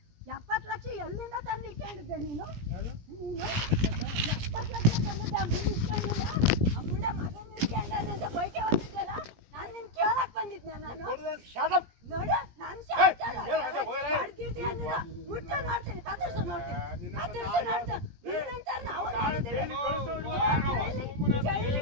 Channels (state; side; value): late; left; 17 ms